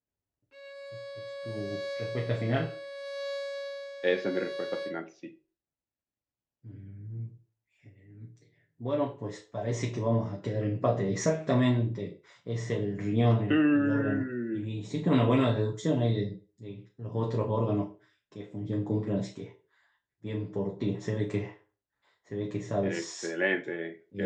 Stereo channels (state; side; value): identical; both; correlation 1.00